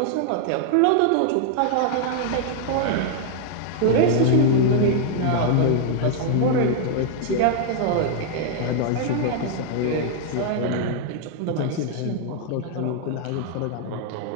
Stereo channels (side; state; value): both; different; correlation 0.00